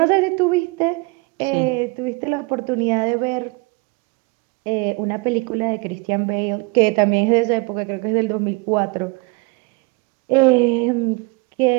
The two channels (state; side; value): quieter; left; 27.8 dB